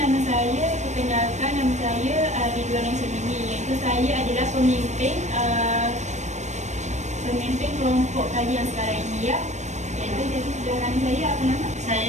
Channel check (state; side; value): late; left; 0.34 ms